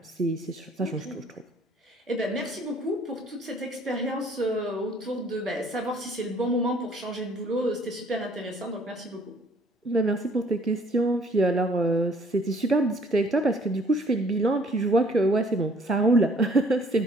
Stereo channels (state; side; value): normal; both; correlation 0.59